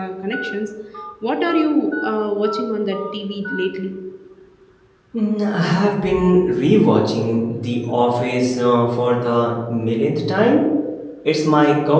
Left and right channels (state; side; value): identical; both; correlation 1.00